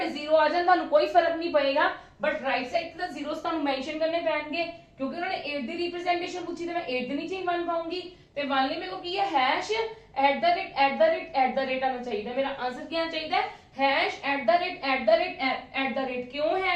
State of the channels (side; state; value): both; identical; correlation 1.00